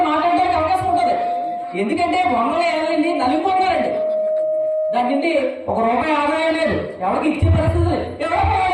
మాట్లాడడానికి అవకాశం ఉంటుంది. ఎందుకంటే 100 ఏళ్ళండి నలిగిపోతున్నారండి. దాని నుండి ₹1 ఆదాయం లేదు, ఎవరికి ఇచ్చే పరిస్థితి లేదు. ఎవరో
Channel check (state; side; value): identical; both; correlation 1.00